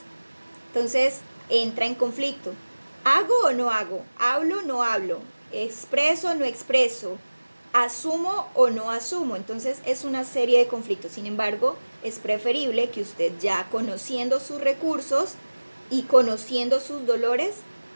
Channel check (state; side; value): inverted; both; correlation -1.00